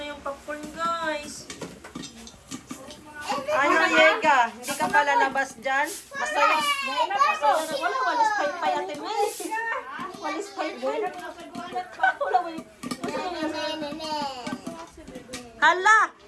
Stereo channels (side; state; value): both; identical; correlation 1.00